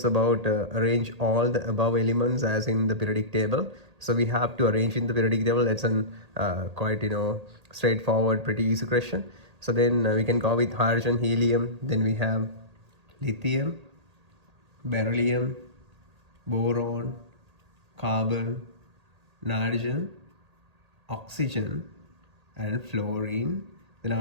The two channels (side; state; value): left; late; 1.8 ms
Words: about arrange all the above elements as in the periodic table. So we have to arrange in the periodic table. That's an quite straightforward, pretty easy question. So then we can go with hydrogen, helium. Then we have lithium, beryllium, boron, carbon, nitrogen, oxygen, and fluorine. Then